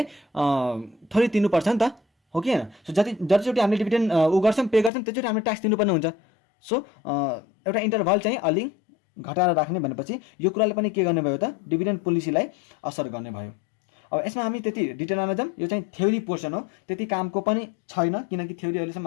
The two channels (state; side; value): drops out; right; at 4.9 s